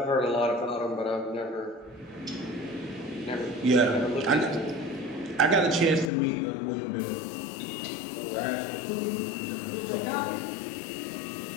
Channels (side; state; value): right; drops out; at 6.1 s